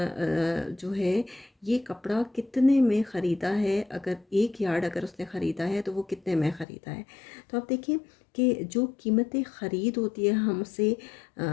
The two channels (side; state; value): right; drops out; at 6.7 s